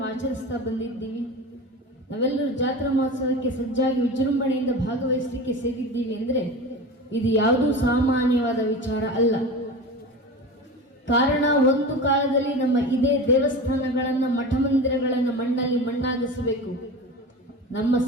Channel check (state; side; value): normal; both; correlation 0.30